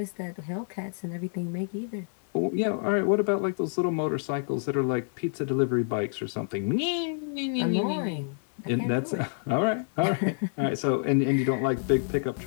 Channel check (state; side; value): silent; right; digital silence